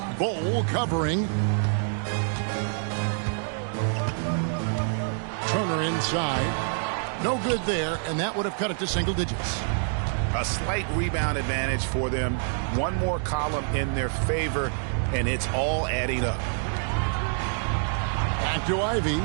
Bowl covering. Turner inside. No good there, and that would have cut it to single digits. A slight rebound advantage for them. One more column in their favor, and it's all adding up. Back to Ivy.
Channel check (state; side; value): silent; left; 60 dB below the other